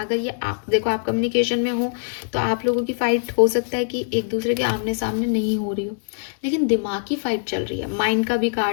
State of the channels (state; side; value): silent; right; digital silence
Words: ये आप देखो, आप कम्युनिकेशन में हो तो आप लोगों की फाइट हो सकता है कि एक दूसरे के आमने सामने नहीं हो रही हो, लेकिन दिमागी फाइट चल रही है। माइंड का भी